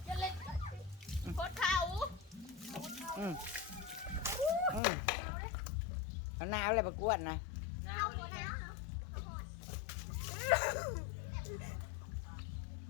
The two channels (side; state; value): right; drops out; at 4.8 s